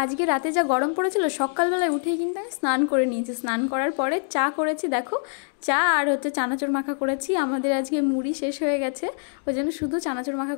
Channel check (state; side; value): silent; right; digital silence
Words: রাতে যা গরম পড়েছিল সকালবেলায় উঠেই কিন্তু আমি স্নান করে নিয়েছি। স্নান করার পরে চা করেছি, দেখো চা আর হচ্ছে চানাচুর মাখা করেছি। আমাদের আজকে মুড়ি শেষ হয়ে গেছে, ওই জন্য শুধু চানাচুর মাখা